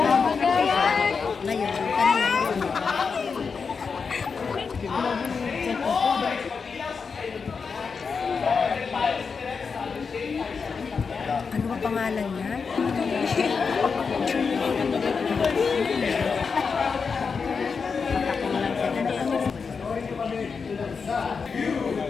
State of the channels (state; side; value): quieter; right; 5.4 dB